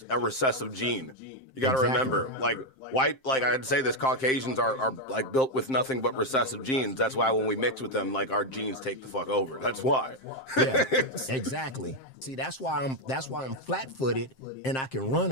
a recessive gene. You got to remember, like I'd say this, Caucasians are like built with nothing but recessive genes. That's why when we mix with them, like our genes take the fuck over. That's why. Yeah, exactly. See, that's why I'm flat-footed and I can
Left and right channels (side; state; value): right; late; 7.6 ms